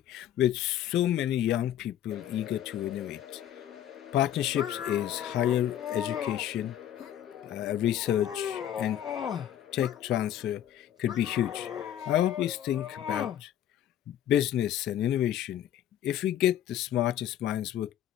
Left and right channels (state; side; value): quieter; right; 11.2 dB